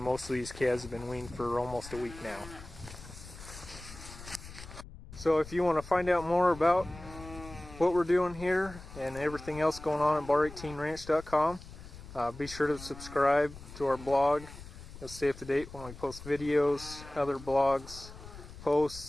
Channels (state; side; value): noise; left; rumble, 15 dB below the sound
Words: of these calves have been weaned for almost a week now. So if you want to find out more about what we're doing here and everything else going on at bar18ranch.com, be sure to subscribe to our blog. You'll stay up to date when we post videos, other blogs,